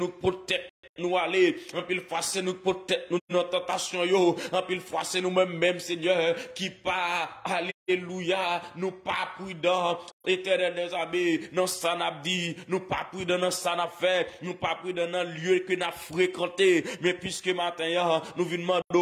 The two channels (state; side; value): identical; both; correlation 1.00